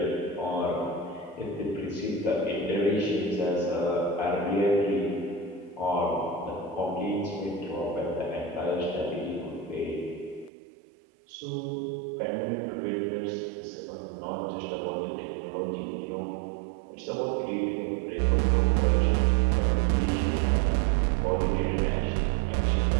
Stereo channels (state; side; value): drops out; left; at 10.5 s